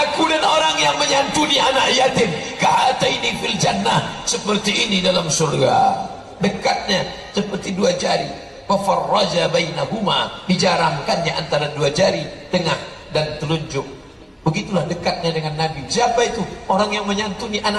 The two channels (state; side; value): identical; both; correlation 1.00